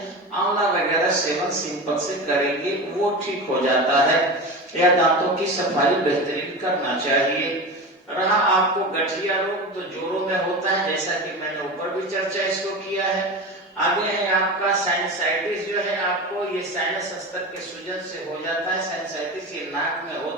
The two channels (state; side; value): normal; both; correlation 0.27